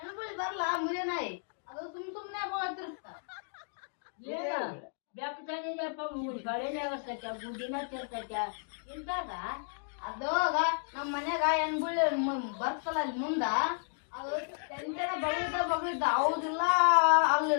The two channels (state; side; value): silent; right; digital silence